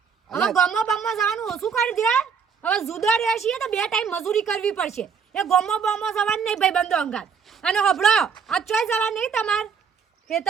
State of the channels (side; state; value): left; quieter; 6.3 dB